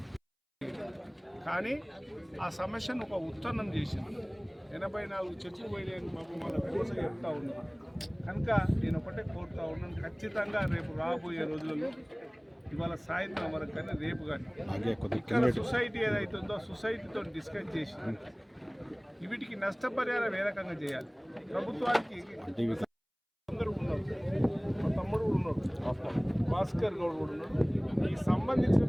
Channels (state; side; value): identical; both; correlation 1.00